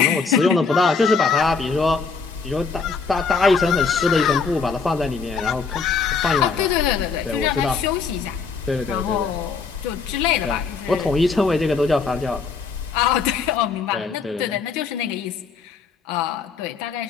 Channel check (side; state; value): right; quieter; 5.0 dB